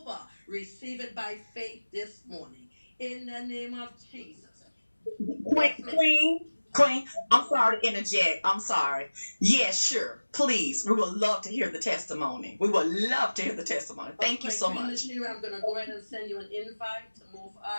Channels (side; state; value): both; inverted; correlation -1.00